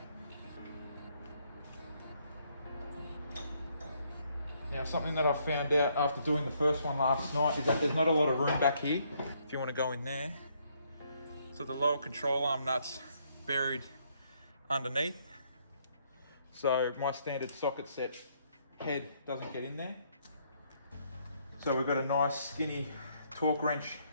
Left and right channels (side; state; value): both; inverted; correlation -0.70